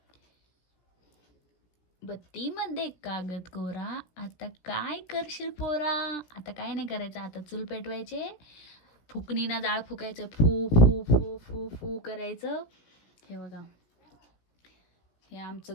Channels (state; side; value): late; right; 16 ms